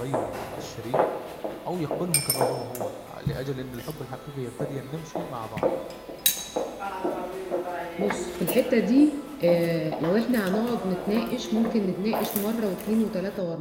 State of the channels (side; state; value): both; identical; correlation 1.00